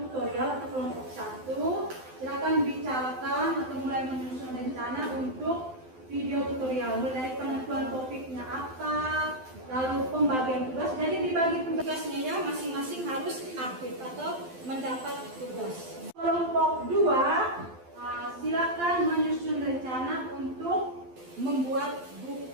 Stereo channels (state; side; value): late; left; 12 ms